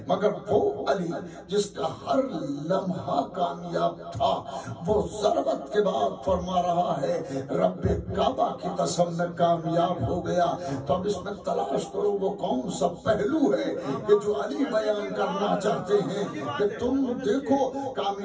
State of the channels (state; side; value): identical; both; correlation 1.00